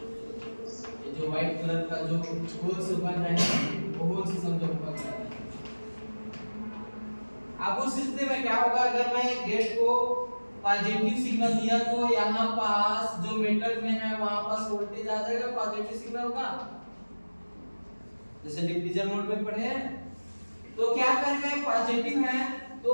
ये जो व्हाइट कलर का जो होल्स बन रहा है वो होल्स समझो पहुंच जाता है। अब उस स्थिति में क्या होगा, अगर मैं गेट को पॉजिटिव सिग्नल दिया तो यहाँ पास जो मेटल में है वहां पास वोल्टेज आ जाएगा पॉजिटिव सिग्नल का, जैसे डिफ्यूजन मोड में पढ़े हैं। तो क्या करेगा, पॉजिटिव है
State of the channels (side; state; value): both; inverted; correlation -1.00